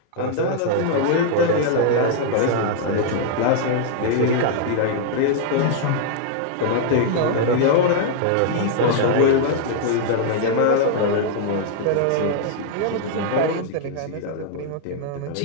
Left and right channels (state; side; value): different; both; correlation -0.01